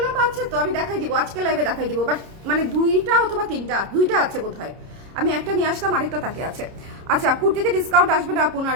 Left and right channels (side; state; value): left; late; 30 ms